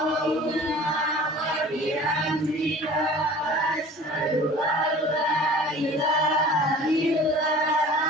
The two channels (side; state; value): both; normal; correlation 0.44